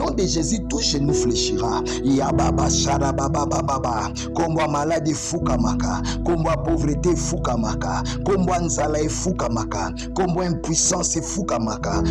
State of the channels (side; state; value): both; identical; correlation 1.00